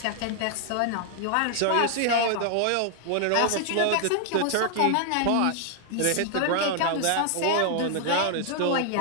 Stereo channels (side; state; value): both; different; correlation 0.00